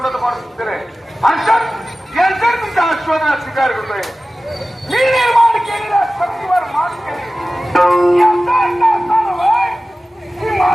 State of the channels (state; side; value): normal; both; correlation 0.96